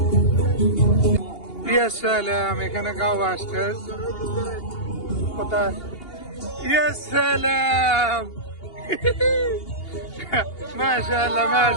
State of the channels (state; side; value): late; right; 2.8 ms